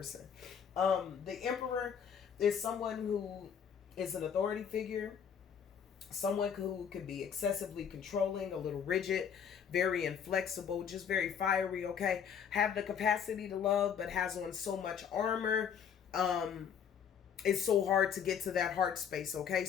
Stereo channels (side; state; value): right; quieter; 7.8 dB